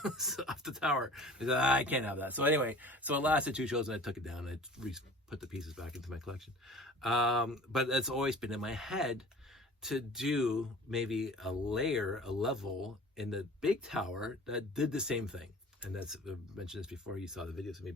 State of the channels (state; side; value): normal; both; correlation 0.44